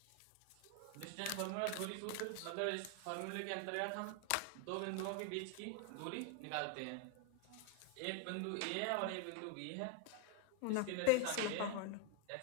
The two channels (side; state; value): both; different; correlation 0.01